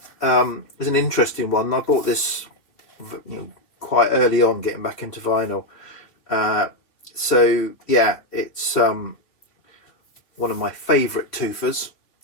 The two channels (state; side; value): late; right; 3.2 ms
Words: is an interesting one. I bought this, you know, quite early on, getting back into vinyl. So yeah, it's one of my favourite Twofers,